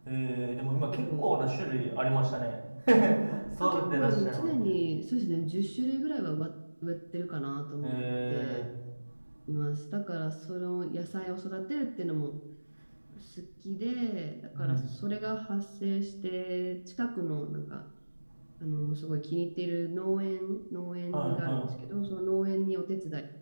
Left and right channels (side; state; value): both; inverted; correlation -1.00